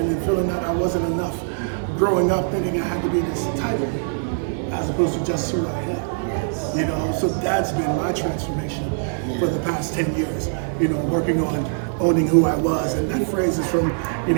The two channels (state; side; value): silent; left; digital silence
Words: and feeling that I wasn't enough. Growing up thinking I had to be this title as opposed to just who I am. You know, so that's been my transformation for the past 10 years. You know, working on owning who I was. And that phrase is from, you